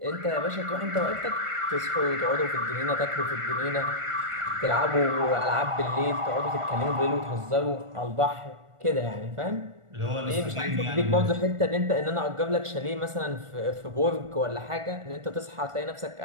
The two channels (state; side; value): late; left; 1.4 ms